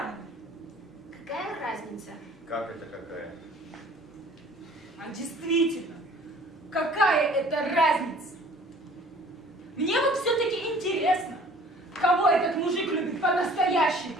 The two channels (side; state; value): both; normal; correlation 0.51